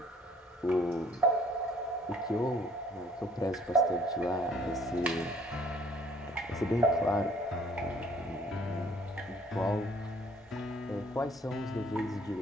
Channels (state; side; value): normal; both; correlation 0.58